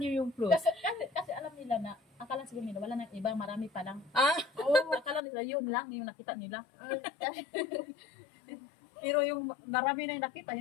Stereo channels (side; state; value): right; drops out; at 5.2 s